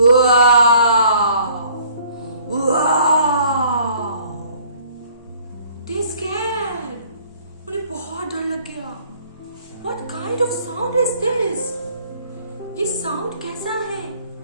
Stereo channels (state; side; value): inverted; both; correlation -0.57